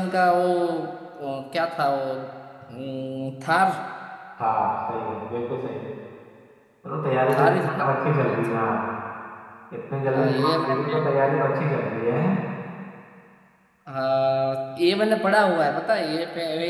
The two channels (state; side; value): identical; both; correlation 1.00